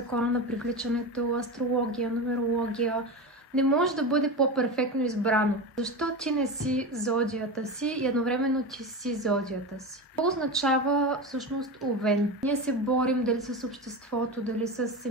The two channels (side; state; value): both; normal; correlation 0.23